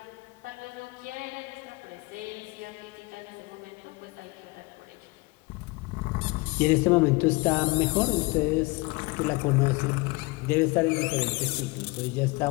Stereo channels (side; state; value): right; quieter; 25.0 dB